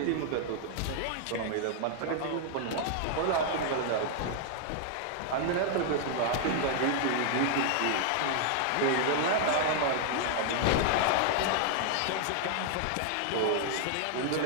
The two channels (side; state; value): both; different; correlation 0.00